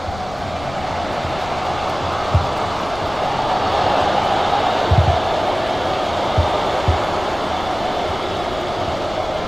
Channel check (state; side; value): noise; left; rumble, 16 dB below the sound